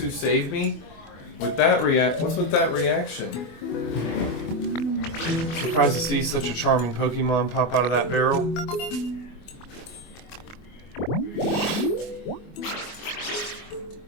saved me? With that what's with that reaction? Surprised to see such a charming Pokemon pop out of that barrel.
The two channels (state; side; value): late; right; 24 ms